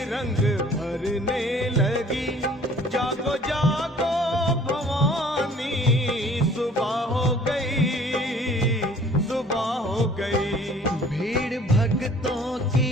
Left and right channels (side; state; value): both; normal; correlation 0.53